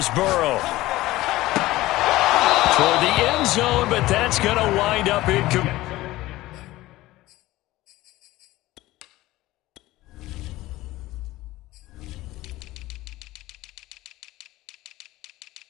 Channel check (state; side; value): quieter; right; 17.5 dB